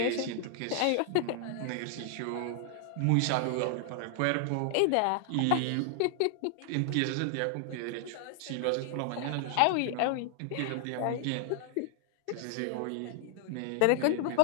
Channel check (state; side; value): different; both; correlation 0.00